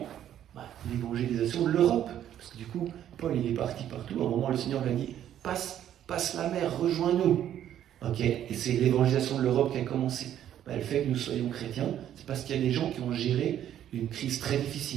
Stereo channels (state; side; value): quieter; left; 10.9 dB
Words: l'évangélisation de l'Europe. Parce que du coup, Paul il est parti partout, à un moment le Seigneur lui a dit « passe la mer, rejoins-nous ». Ok, et c'est l'évangélisation de l'Europe qui a commencé. Le fait que nous soyons chrétiens, c'est parce qu'il y a des gens qui ont géré une crise très